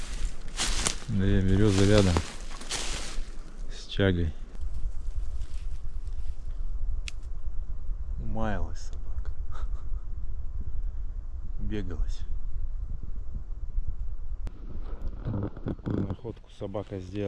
Две березы рядом с чагой. Умаялась собака. Бегалась. Вот такую находку собака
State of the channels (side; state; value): both; identical; correlation 1.00